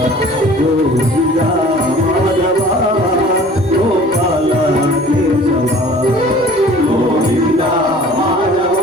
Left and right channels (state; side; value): normal; both; correlation 0.48